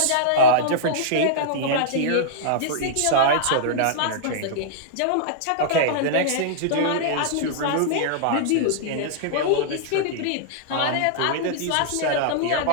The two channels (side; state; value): both; different; correlation -0.02